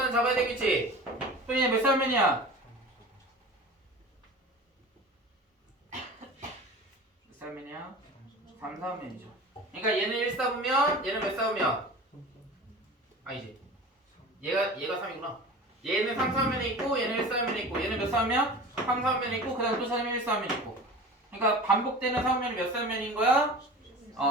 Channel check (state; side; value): normal; both; correlation 0.36